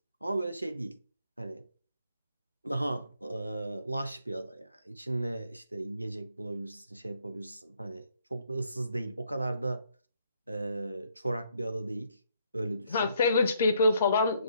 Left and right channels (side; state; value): both; inverted; correlation -0.71